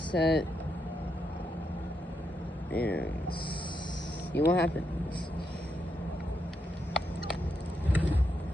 and see what happens.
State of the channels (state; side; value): normal; both; correlation 0.81